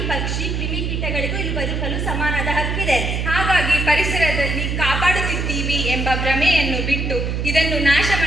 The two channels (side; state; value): right; noise; hum, 1 dB below the sound